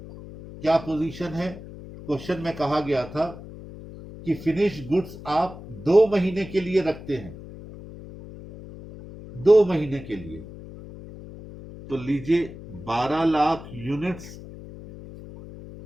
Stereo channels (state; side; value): noise; left; hum, 14 dB below the sound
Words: क्या पोजीशन है, क्वेश्चन में कहा गया था कि फिनिश गुड्स आप 2 महीने के लिए रखते हैं, 2 महीने के लिए, तो लीजिए 12 लाख यूनिट्स